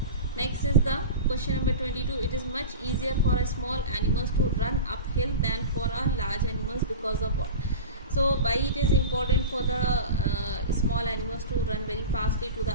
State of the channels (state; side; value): inverted; both; correlation -0.30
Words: Next is the question number 22. It is much easier for a small animals to run uphill than for a large animals, because of what? So why it is important for the small animals to run very fastly to the